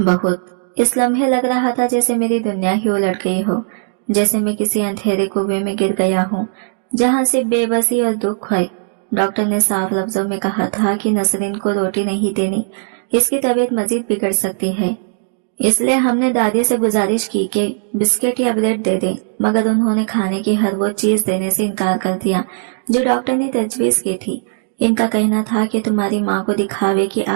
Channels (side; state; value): left; silent; digital silence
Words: इस लम्हे लग रहा था जैसे मेरी दुनिया ही उलट गई हो, जैसे मैं किसी अंधेरे कुएं में गिर गया हूँ जहाँ से बेबसी और दुख है। डॉक्टर ने साफ लफ्जों में कहा था कि नसरीन को रोटी नहीं देनी, इसकी तबीयत मजीद बिगड़ सकती है। इसलिए हमने दादी से गुजारिश की कि बिस्किट या ब्रेड दे दें, मगर उन्होंने खाने की हर वो चीज देने से इनकार कर दिया जो डॉक्टर ने तजवीज की थी। इनका कहना था कि तुम्हारी माँ को दिखावे की